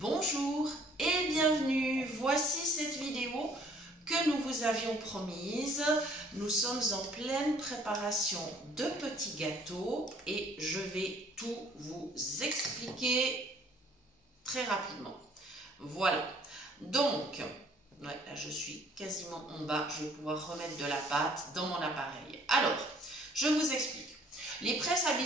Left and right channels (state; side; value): normal; both; correlation 0.58